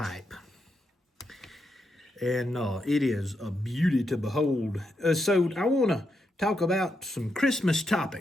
And it is a beauty to behold. So I want to talk about some Christmas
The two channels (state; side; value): normal; both; correlation 0.83